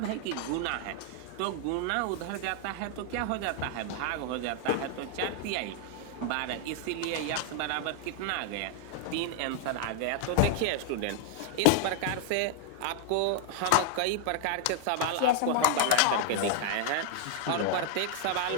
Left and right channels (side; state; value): both; different; correlation 0.00